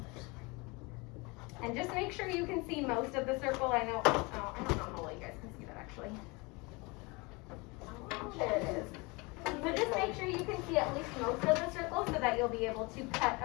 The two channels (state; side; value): quieter; right; 26.7 dB